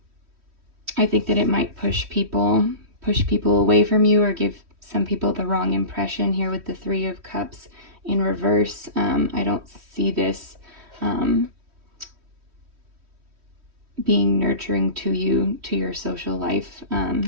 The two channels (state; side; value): late; left; 3.1 ms